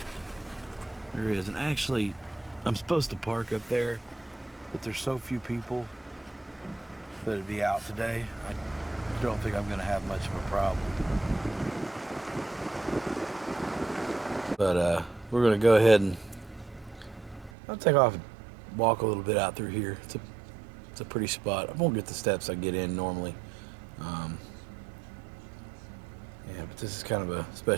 there is. And actually, I'm supposed to park up there, but there's so few people that'd be out today. I don't think I'm going to have much of a problem. But we're going to go ahead and I'll take off and walk a little bit out through here. It's a pretty spot. I won't get the steps I get in normally. Yeah, but this is kind of a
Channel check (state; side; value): drops out; left; at 17.5 s